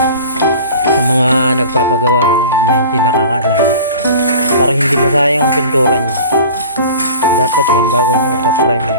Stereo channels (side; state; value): both; inverted; correlation -0.40